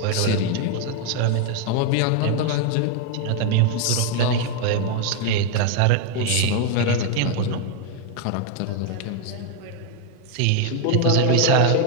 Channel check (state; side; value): different; both; correlation 0.01